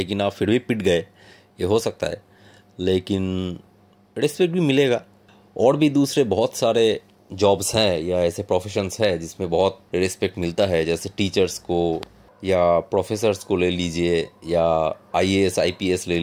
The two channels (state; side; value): identical; both; correlation 1.00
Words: आप फिर भी पिट गए, ये हो सकता है। लेकिन रिस्पेक्ट भी मिलेगा। और भी दूसरे बहुत सारे जॉब्स हैं या ऐसे प्रोफेशंस हैं जिसमें बहुत रिस्पेक्ट मिलता है, जैसे टीचर्स को या प्रोफेसर्स को ले लीजिए, या आईएएस आईपीएस ले